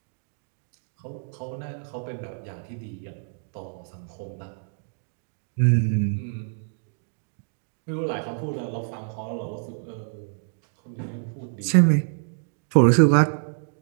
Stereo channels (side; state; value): left; silent; 60 dB below the other